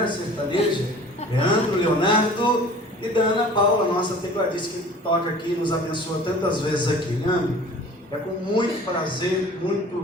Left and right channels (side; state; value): both; normal; correlation 0.45